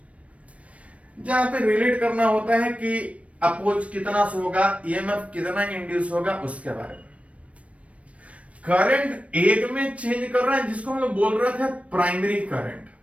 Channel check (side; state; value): left; late; 0.064 ms